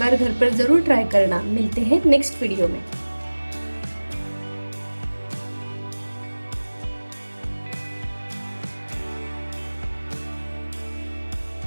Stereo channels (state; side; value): inverted; both; correlation -1.00